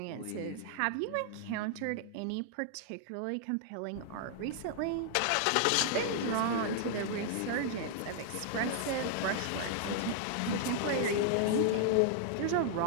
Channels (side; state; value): both; different; correlation 0.00